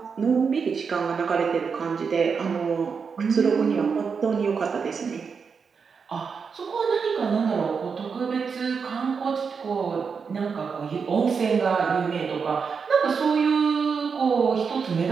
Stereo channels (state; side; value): quieter; left; 5.7 dB